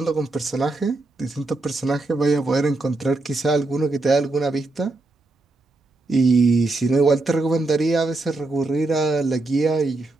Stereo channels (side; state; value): left; quieter; 3.1 dB